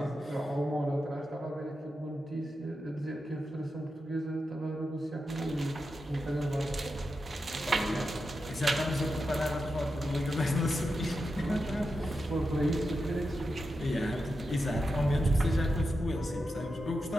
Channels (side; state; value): both; normal; correlation 0.89